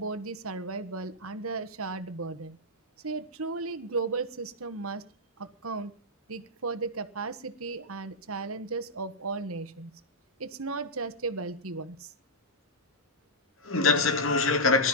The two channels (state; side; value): normal; both; correlation -0.08